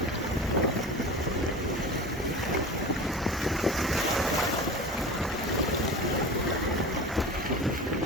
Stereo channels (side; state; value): both; normal; correlation 0.33